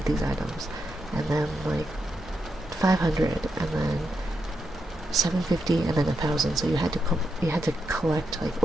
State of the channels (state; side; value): noise; left; hum, 23 dB below the sound